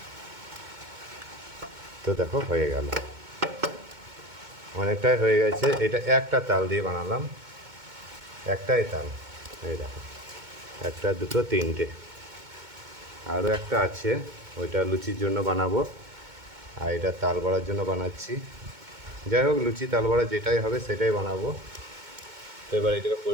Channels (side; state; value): left; late; 2.2 ms